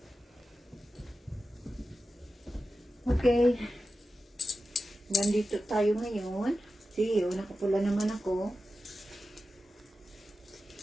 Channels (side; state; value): both; normal; correlation 0.93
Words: Okay. Nandito tayo ngayon. See, nakapula naman ako.